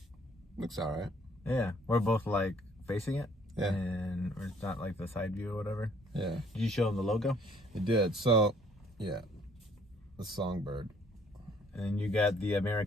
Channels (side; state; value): both; normal; correlation 0.61